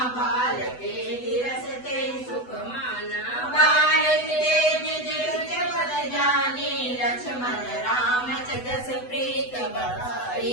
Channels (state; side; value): late; right; 8.0 ms